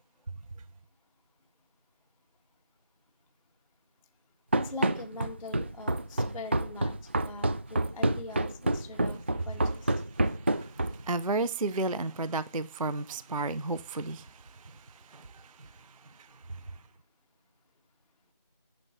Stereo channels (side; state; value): both; inverted; correlation -0.71